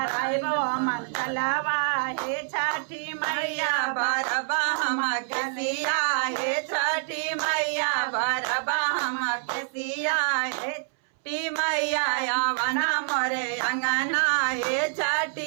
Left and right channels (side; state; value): left; silent; 61 dB below the other